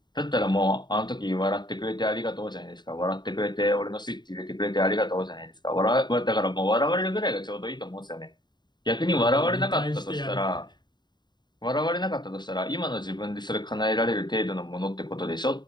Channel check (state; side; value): late; right; 0.21 ms